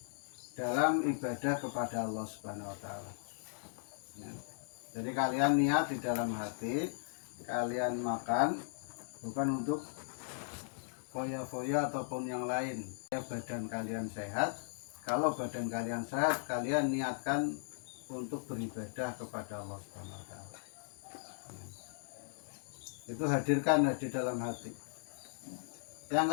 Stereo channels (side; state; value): right; silent; digital silence